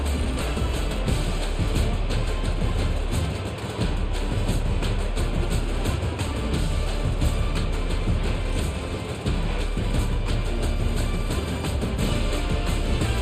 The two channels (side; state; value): both; identical; correlation 1.00